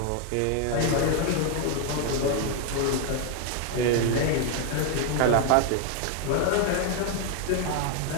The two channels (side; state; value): both; different; correlation 0.01